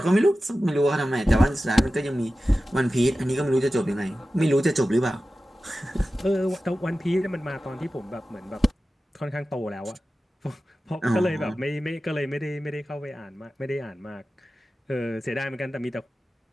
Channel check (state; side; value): normal; both; correlation 0.95